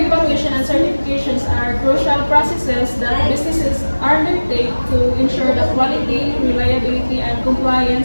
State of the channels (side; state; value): both; inverted; correlation -1.00